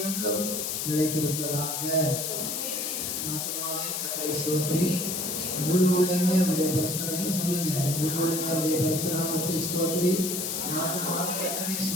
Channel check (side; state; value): left; noise; hiss, 2 dB below the sound